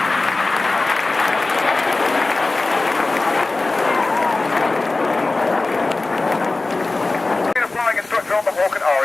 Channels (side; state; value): right; quieter; 3.3 dB